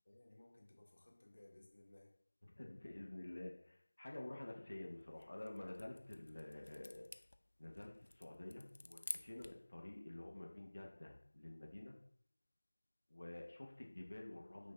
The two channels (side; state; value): both; inverted; correlation -1.00